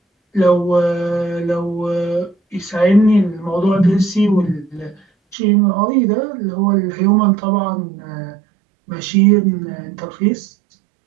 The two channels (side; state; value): left; drops out; at 5.4 s